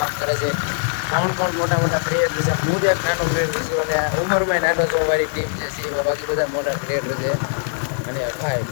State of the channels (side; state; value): right; silent; 61 dB below the other